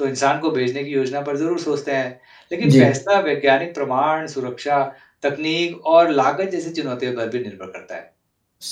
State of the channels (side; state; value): both; identical; correlation 1.00